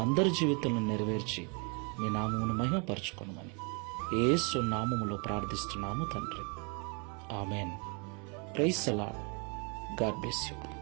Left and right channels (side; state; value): left; quieter; 34.1 dB